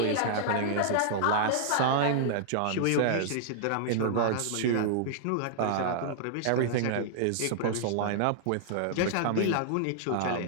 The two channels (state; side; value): different; both; correlation -0.01